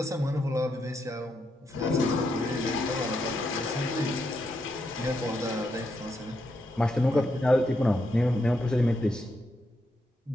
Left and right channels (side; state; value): both; normal; correlation 0.81